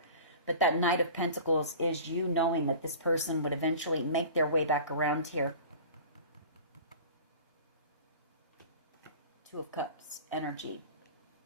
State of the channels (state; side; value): inverted; both; correlation -0.40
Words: But that Knight of Pentacles is you knowing that this person would eventually make their way back around here. Two of Cups energy.